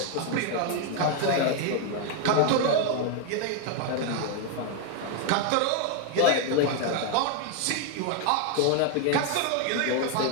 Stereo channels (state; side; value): different; both; correlation 0.01